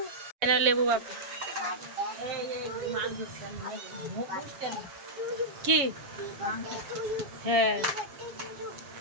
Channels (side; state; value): left; late; 7.2 ms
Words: লেবু বাপু কি? হ্যাঁ